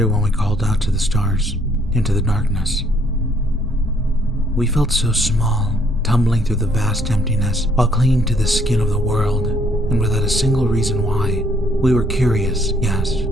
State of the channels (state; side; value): normal; both; correlation 0.66